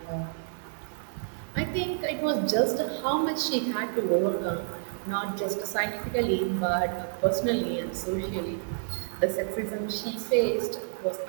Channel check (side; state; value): left; silent; digital silence